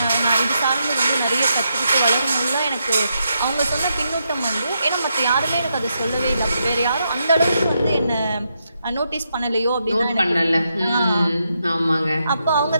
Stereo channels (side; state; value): both; inverted; correlation -0.82